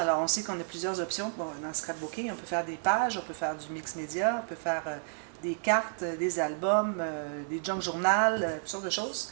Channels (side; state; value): left; silent; digital silence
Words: on sait qu'on a plusieurs options dans le scrapbooking. On peut faire des pages, on peut faire du mix média, on peut faire des cartes, des albums, des junk journal, toutes sortes de